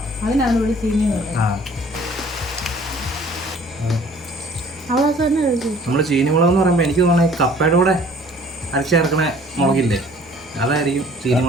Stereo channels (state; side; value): normal; both; correlation 0.54